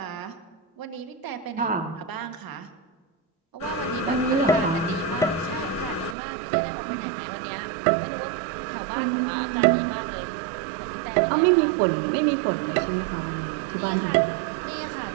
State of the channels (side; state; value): left; drops out; at 6.2 s